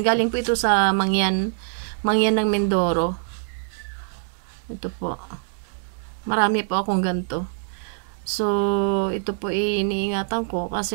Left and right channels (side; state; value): left; silent; digital silence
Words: Galing po ito sa Mangyan ng Mindoro. Ito po. Marami po akong ganito. So, ito po iniingatan ko